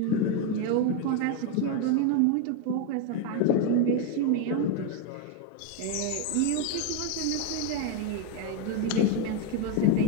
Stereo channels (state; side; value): different; both; correlation 0.02